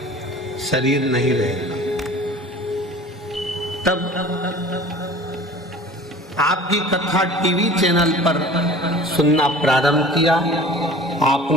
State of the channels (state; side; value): normal; both; correlation 0.43